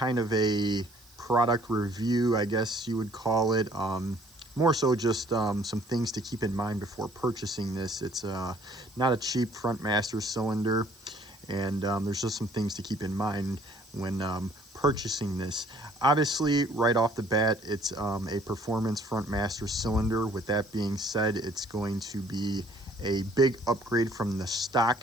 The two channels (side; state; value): right; noise; hiss, 26 dB below the sound